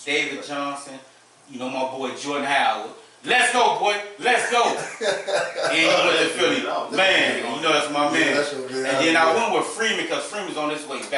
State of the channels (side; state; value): both; identical; correlation 1.00